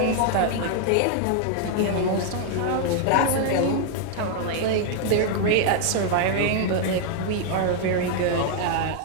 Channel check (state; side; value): different; both; correlation 0.00